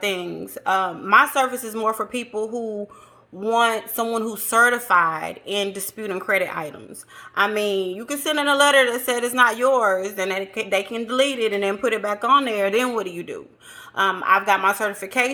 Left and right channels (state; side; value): identical; both; correlation 1.00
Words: My service is more for people who want someone who's certified in disputing credit items. I mean, you can send in a letter that said it's not yours, and they can delete it and then put it back on there. Then what do you do? I've got my